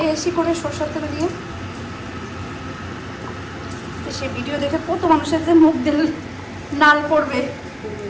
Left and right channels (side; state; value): both; identical; correlation 1.00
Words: করে সরষের তেল দিয়ে, সে ভিডিও দেখে কত মানুষের যে মুখ দিল নাল পড়বে।